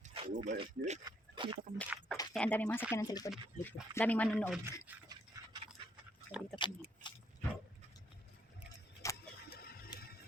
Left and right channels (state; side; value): normal; both; correlation 0.71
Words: kami. Kaya ang daming mga sakyanan sa likod. Daming manonood. So dito kami.